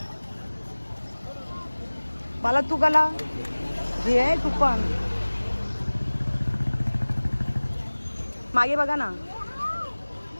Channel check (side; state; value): both; inverted; correlation -1.00